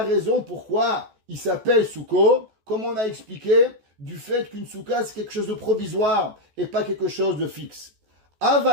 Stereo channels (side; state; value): left; late; 14 ms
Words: raison pourquoi il s'appelle Souko? Comme on a expliqué, du fait qu'une souka, c'est quelque chose de provisoire et pas quelque chose de fixe.